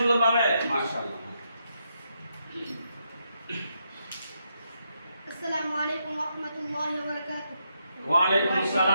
মাশাআল্লাহ। আসসালামু আলাইকুম ওয়া রাহমাতুল্লাহি ওয়া বারাকাতুহু। ওয়া আলাইকুম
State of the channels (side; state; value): both; inverted; correlation -0.80